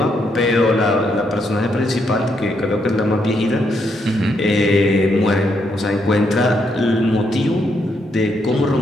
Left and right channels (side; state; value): both; normal; correlation 0.77